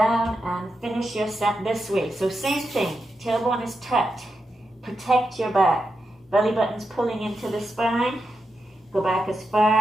and finish your set this way. So same thing. Tailbone is tucked. protect your back. Belly button's pulling into the spine. Go back as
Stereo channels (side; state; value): both; normal; correlation 0.87